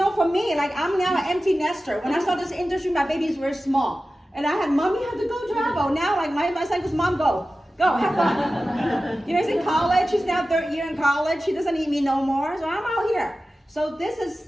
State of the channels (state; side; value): normal; both; correlation 0.95